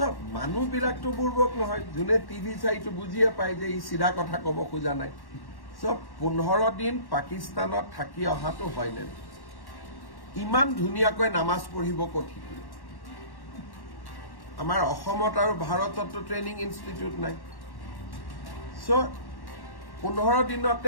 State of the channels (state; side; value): late; right; 1.1 ms